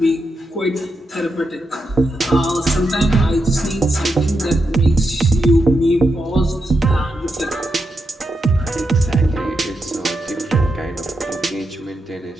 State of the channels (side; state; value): both; normal; correlation 0.85